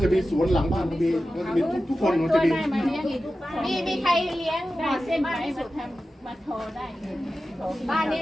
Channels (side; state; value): both; normal; correlation 0.93